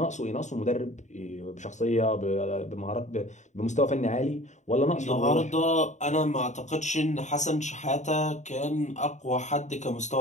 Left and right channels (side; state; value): right; late; 0.34 ms